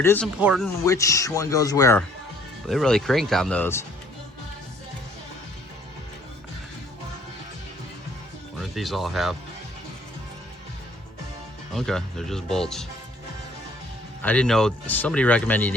is important which one goes where. They really cranked on those. What do these all have? Okay, they're just bolts. I didn't know, somebody recommended you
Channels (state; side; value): normal; both; correlation 0.59